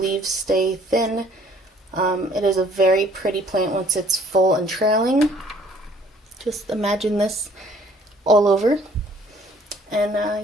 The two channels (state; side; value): normal; both; correlation 0.58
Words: stay thin. It is a very pretty plant once it's full and trailing. Just imagine this all over. And